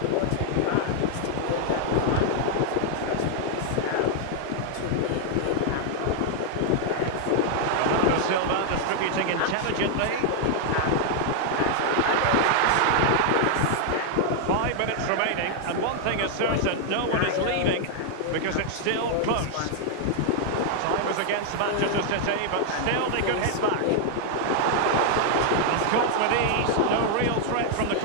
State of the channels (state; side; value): different; both; correlation 0.00